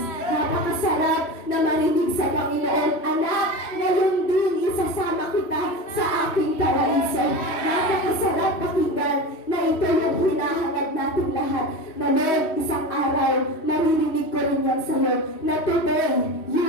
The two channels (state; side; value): late; right; 3.1 ms